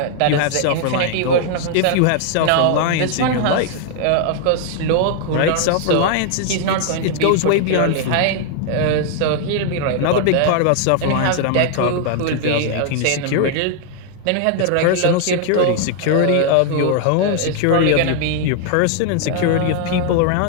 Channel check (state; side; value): different; both; correlation 0.00